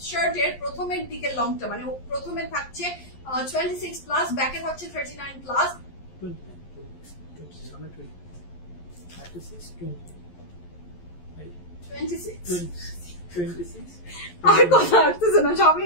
শার্টের প্রথমের দিকের লংটা মানে প্রথমে থাকছে 26 প্লাস, ব্যাকে থাকছে 39 প্লাস। আর কথা আসতেছে না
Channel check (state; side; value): late; right; 11 ms